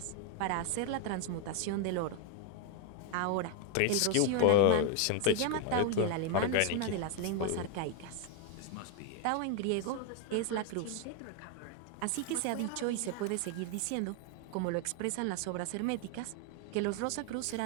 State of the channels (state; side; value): different; both; correlation 0.01